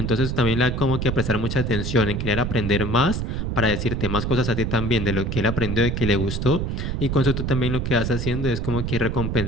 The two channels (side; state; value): right; noise; rumble, 2 dB below the sound